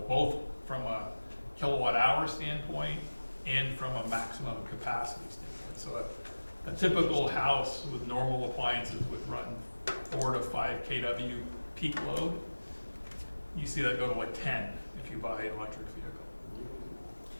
both from a kilowatt hour standpoint and from a maximum capacity standpoint. So a typical house with normal appliances would run 4 to 5 kW peak load. You see that go to like 10 if you buy an electric vehicle.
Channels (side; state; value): both; inverted; correlation -1.00